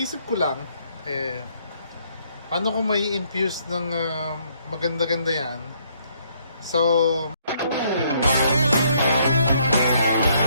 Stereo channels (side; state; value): both; inverted; correlation -0.68